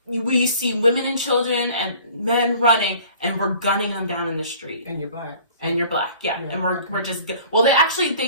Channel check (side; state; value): both; inverted; correlation -0.49